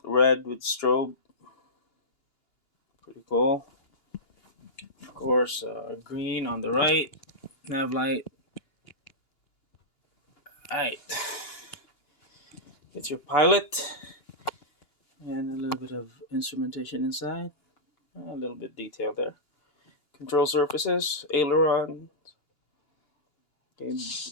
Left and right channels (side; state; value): right; late; 2.9 ms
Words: red with strobe. Pretty cool. Of course, green on the right. Nav light. Alright. It's your pilot. And a little bit of instrumentation inside. A little bit detail there. Control surfaces, aileron. Okay,